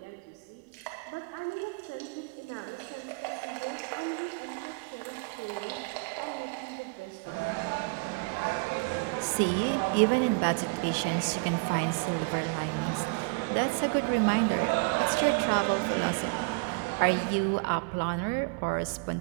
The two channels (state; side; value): quieter; left; 31.1 dB